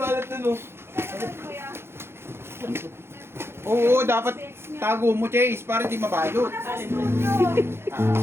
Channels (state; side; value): late; left; 0.12 ms